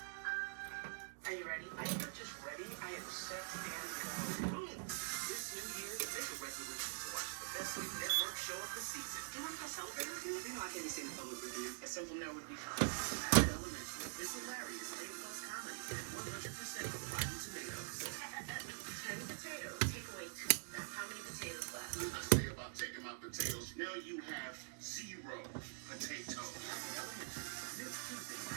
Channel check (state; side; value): silent; left; digital silence